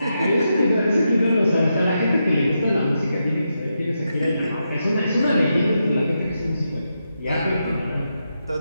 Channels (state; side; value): inverted; both; correlation -0.85